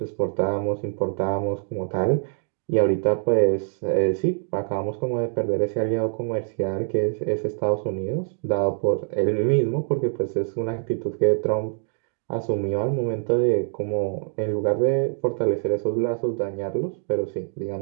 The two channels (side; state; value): left; silent; digital silence